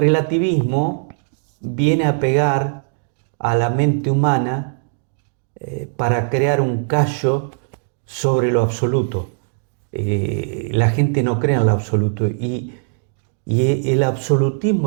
viene a pegar a la mente humana para crear un callo sobre lo absoluto. La gente no cree en lo absoluto y el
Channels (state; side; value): silent; left; digital silence